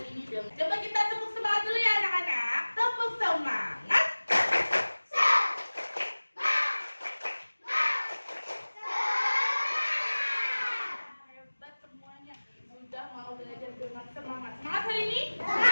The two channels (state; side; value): inverted; both; correlation -1.00